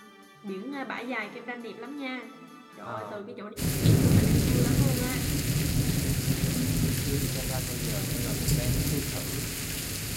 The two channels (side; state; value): both; identical; correlation 1.00